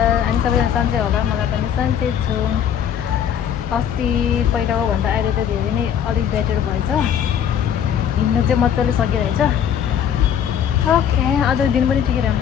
I'm सबैजना सन्चै होला मलाई पनि सन्चै छु अस्ति पहिलाको भन्दा अहिले त धेरै नै अलि बेटर भएछ हिँड्नु चाहिँ मजाले सकिरहेछ ओके आज दिन पनि ठिकै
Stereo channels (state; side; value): quieter; right; 8.8 dB